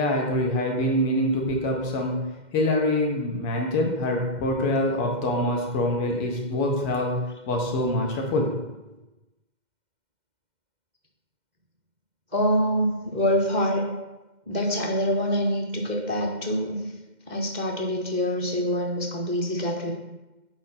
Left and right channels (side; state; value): left; late; 2.1 ms